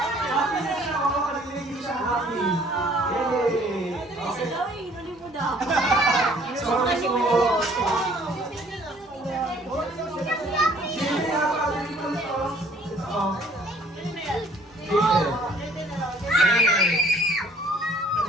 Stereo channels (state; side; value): normal; both; correlation 0.57